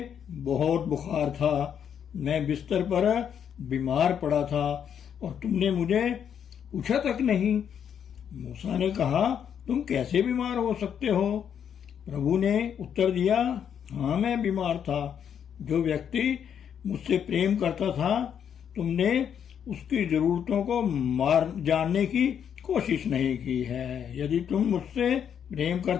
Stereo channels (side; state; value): right; quieter; 8.4 dB